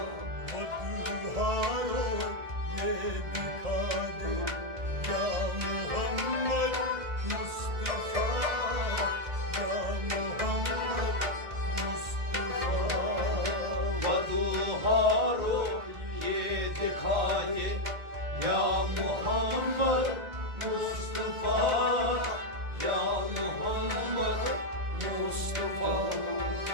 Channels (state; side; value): late; left; 1.9 ms